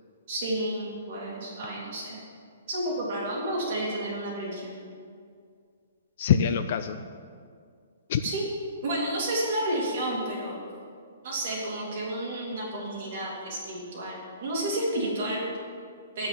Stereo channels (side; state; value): both; inverted; correlation -0.49